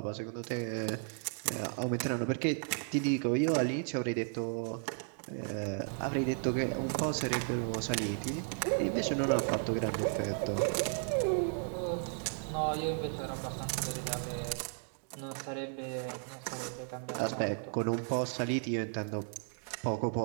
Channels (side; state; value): left; silent; 55 dB below the other